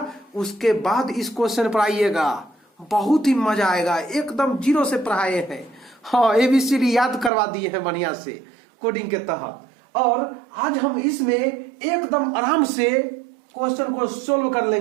उसके बाद इस क्वेश्चन पर आइएगा। बहुत ही मजा आएगा, एकदम जीरो से पढ़ाए हैं। हाँ, ABCD याद करवा दिए हैं बढ़िया से कोडिंग के तहत। और आज हम इसमें एकदम आराम से क्वेश्चन को सोल्व कर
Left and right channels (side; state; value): left; drops out; at 7.3 s